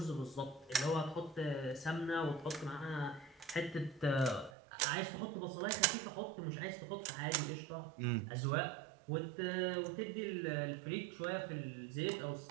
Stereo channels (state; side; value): drops out; left; at 4.5 s